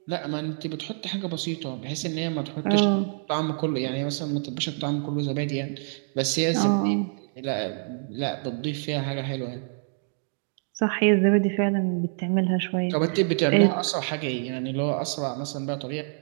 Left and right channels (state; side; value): silent; left; 61 dB below the other